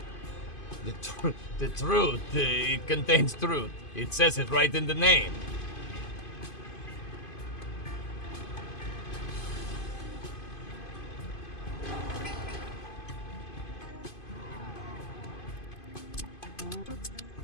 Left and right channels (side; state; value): right; late; 2.5 ms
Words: The truth, it contains truth. It says it right in the name.